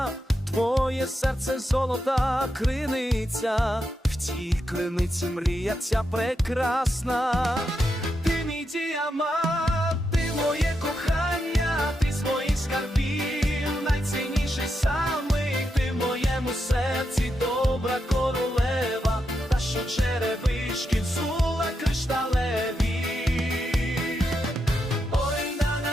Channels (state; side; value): normal; both; correlation 0.84